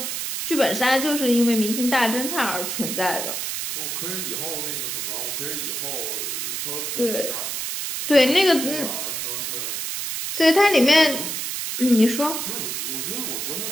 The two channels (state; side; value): noise; right; hiss, 3 dB below the sound